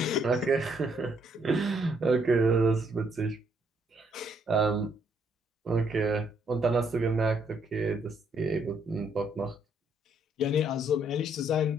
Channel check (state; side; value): normal; both; correlation 0.71